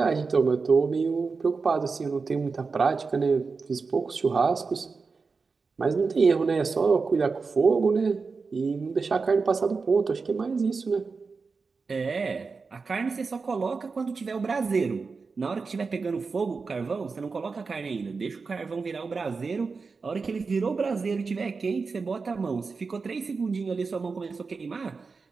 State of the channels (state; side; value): quieter; left; 4.6 dB